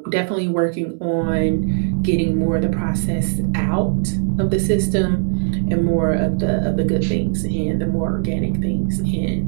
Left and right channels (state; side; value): silent; left; 66 dB below the other